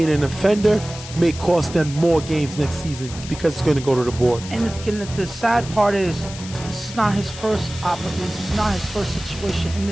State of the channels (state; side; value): noise; left; hiss, 13 dB below the sound